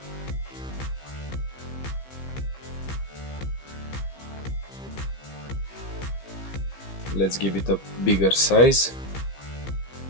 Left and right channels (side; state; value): right; late; 15 ms